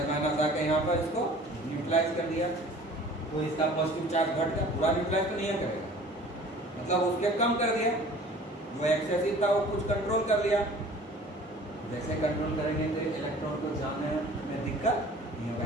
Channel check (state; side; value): normal; both; correlation 0.47